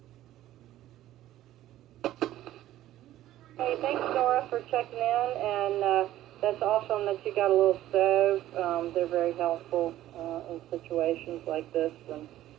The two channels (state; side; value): quieter; left; 13.9 dB